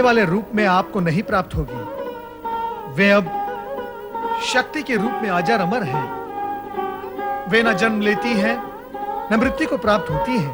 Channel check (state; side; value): identical; both; correlation 1.00